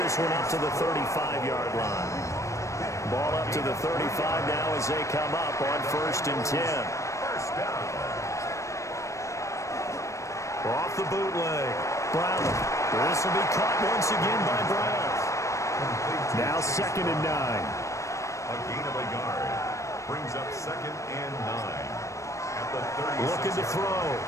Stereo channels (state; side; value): late; right; 0.15 ms